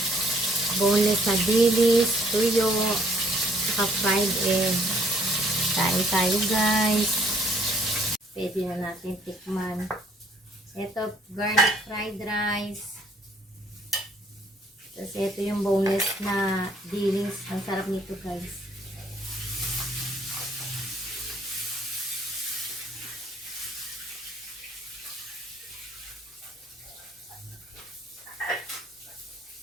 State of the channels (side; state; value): both; normal; correlation 0.63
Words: boneless na dilis, tuyo, saka fried egg. Kain tayo guys. Pwede na natin tikman. Ito, garlic fried rice. Tapos ito yung boneless na dilis. Ang sarap nito guys.